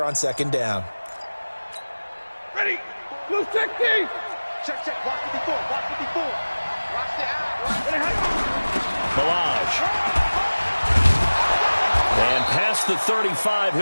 on second down. Ready. Blue 60. Check, check. Block 54. Block 54. Watch the out. Balaj. And past the 35,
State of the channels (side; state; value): both; inverted; correlation -1.00